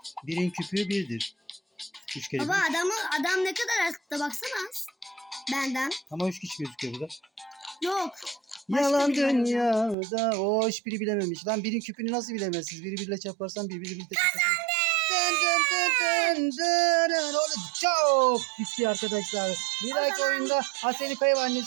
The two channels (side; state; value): left; drops out; at 10.0 s